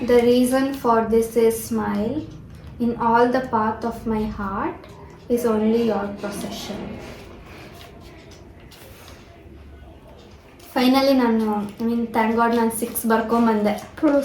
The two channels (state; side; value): identical; both; correlation 1.00